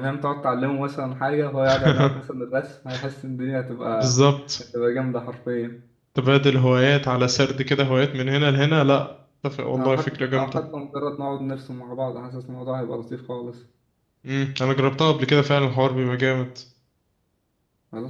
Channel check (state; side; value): identical; both; correlation 1.00